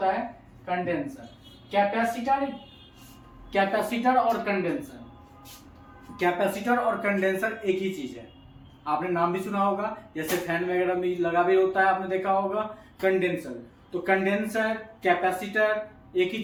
है? कंडेंसर। कैपेसिटर और कंडेंसर, कैपेसिटर और कंडेंसर एक ही चीज है। आपने नाम भी सुना होगा, जैसे फैन वगैरह में लगा भी होता है, आपने देखा होगा कंडेंसर। तो कंडेंसर कैपेसिटर एक ही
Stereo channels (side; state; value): both; identical; correlation 1.00